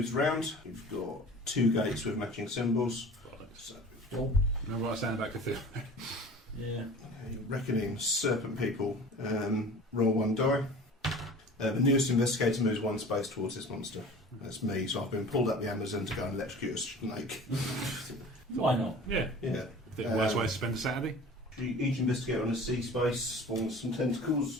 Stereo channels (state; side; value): normal; both; correlation 0.42